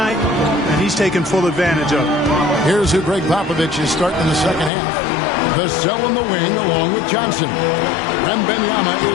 and he's taken full advantage of it. Here's who Greg Popovich is starting in the second half. Vassell in the wing along with Johnson. Wembanyama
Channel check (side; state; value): right; drops out; at 4.7 s